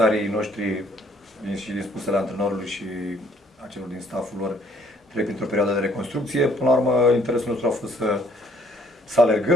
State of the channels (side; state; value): both; normal; correlation 0.63